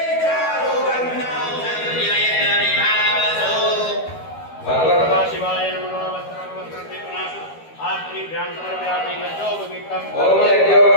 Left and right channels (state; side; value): late; right; 12 ms